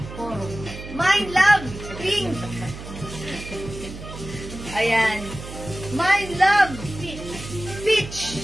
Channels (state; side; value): noise; right; hum, 12 dB below the sound